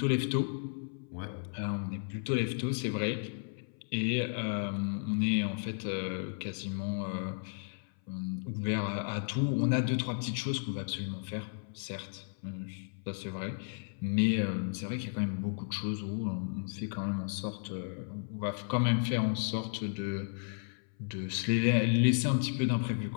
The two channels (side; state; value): right; silent; 55 dB below the other